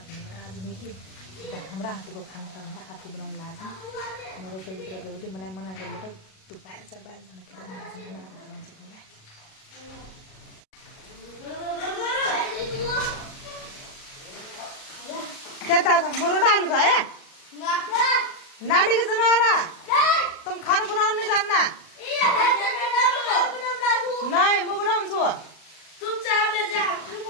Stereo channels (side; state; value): right; late; 37 ms